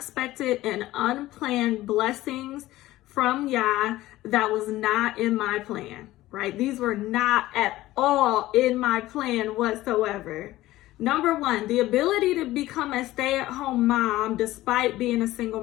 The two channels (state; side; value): quieter; right; 16.4 dB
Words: and unplanned blessings from Yah that was not in my plan, right? These were not at all in my plan whatsoever. Number one, the ability to become a stay-at-home mom despite being a